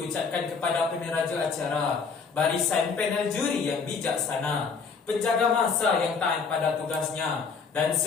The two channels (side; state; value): right; quieter; 5.3 dB